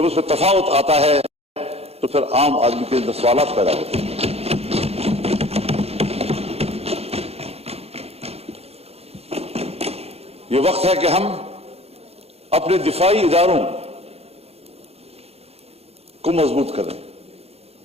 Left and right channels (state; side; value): late; left; 0.29 ms